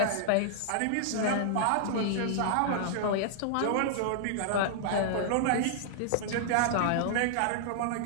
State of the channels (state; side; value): different; both; correlation -0.01